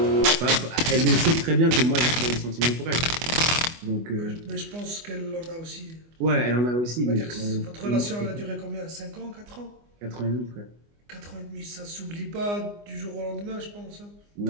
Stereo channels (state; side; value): late; left; 24 ms